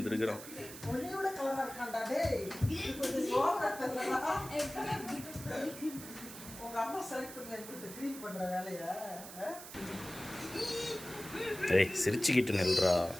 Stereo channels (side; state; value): right; noise; hiss, 13 dB below the sound